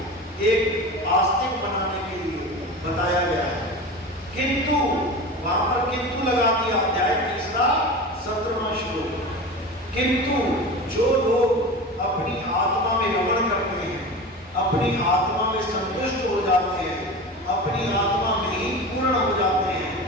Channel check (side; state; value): both; normal; correlation 0.30